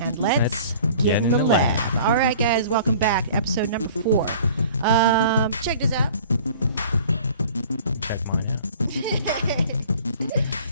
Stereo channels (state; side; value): inverted; both; correlation -0.48